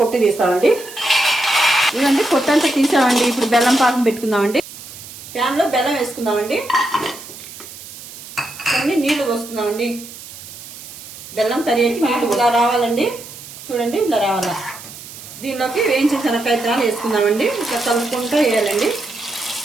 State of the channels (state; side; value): noise; right; hiss, 15 dB below the sound